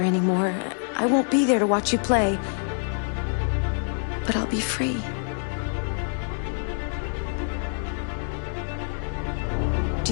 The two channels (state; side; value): silent; right; 61 dB below the other